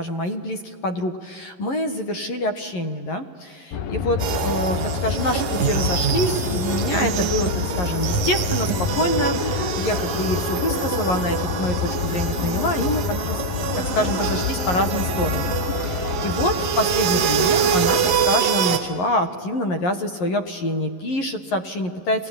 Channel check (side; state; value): right; late; 11 ms